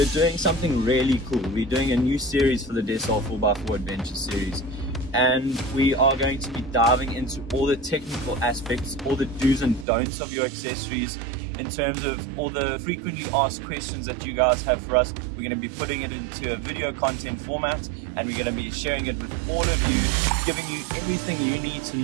doing something really cool. We're doing a new series for the Desal 4x4 Adventure series, and we are going to be diving into all the technical aspects, all the do's and don'ts of your accessories, in terms of all the frequently asked questions that you guys have for us. We're going to be putting it into a video content format, and we're going to be sharing it with all of you, giving you everything you need to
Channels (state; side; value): drops out; left; at 9.9 s